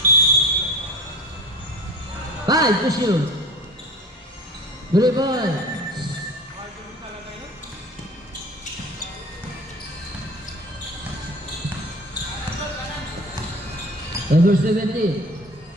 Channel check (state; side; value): normal; both; correlation 0.39